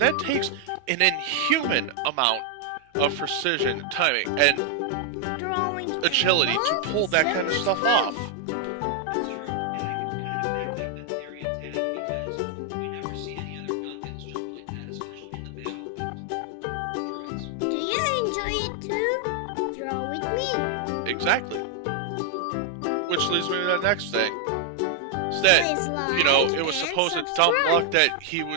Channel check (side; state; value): both; different; correlation 0.00